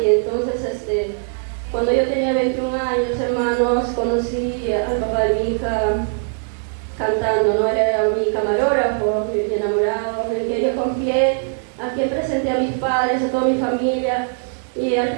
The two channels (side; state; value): left; silent; 62 dB below the other